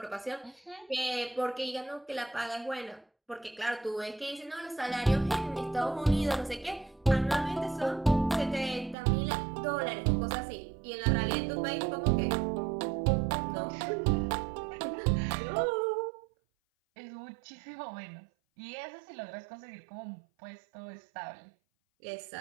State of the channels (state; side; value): drops out; left; at 9.0 s